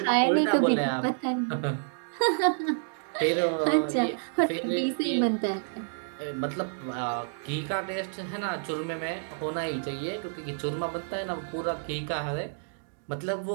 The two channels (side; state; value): left; silent; digital silence